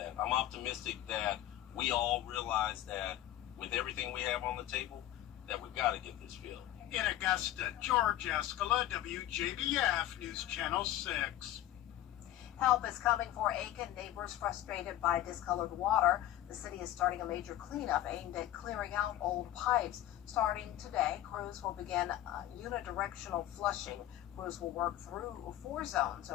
I'm optimistic that we all realize that with everything we have on the table, that we've got to get this filled. In Augusta, George Escala, WJBF News Channel 6. Help is coming for Aiken neighbors frustrated by discolored water. The city is starting a major cleanup aimed at clearing out old pipes. Starting today, crews will begin unidirectional flushing. Crews will work through 4 zones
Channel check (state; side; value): quieter; right; 13.4 dB